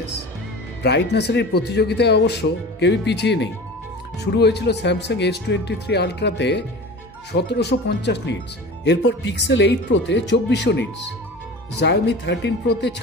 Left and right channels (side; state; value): both; normal; correlation 0.36